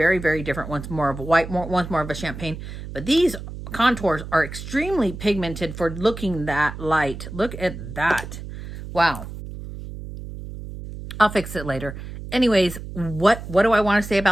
very different. One's more of a white, one's more of a champagne. But these contours are extremely pigmented for looking that light. Look at that. Wow. I'll fix it later. Anyways, what do I want to say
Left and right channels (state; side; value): noise; right; hum, 10 dB below the sound